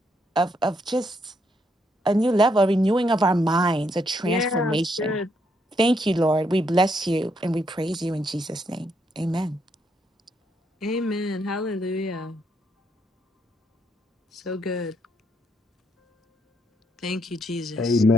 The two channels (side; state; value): both; normal; correlation 0.75